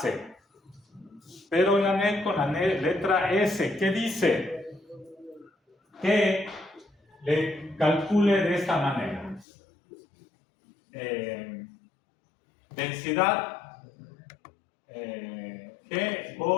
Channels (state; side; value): drops out; right; at 9.5 s